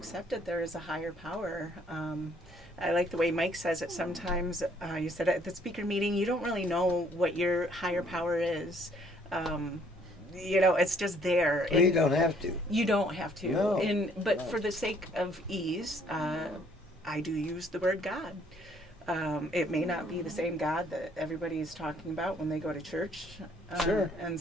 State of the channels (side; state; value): both; normal; correlation 0.63